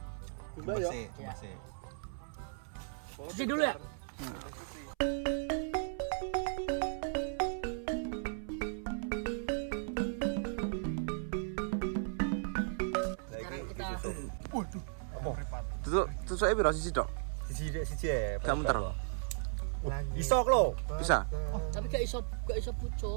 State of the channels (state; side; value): silent; left; 54 dB below the other